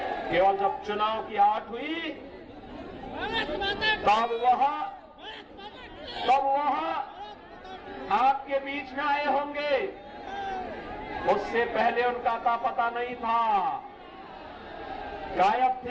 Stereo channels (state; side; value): identical; both; correlation 1.00